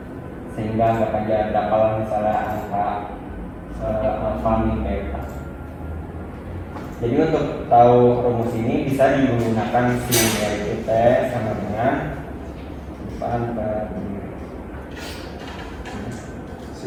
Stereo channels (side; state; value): both; identical; correlation 1.00